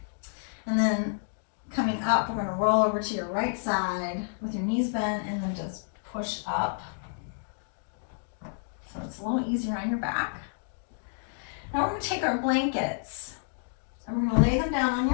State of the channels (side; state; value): right; silent; digital silence